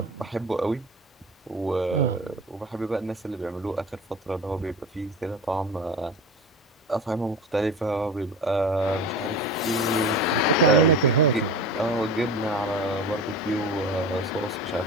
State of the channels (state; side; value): normal; both; correlation 0.31